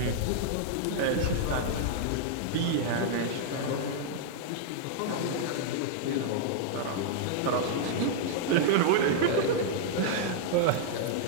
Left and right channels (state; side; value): different; both; correlation -0.01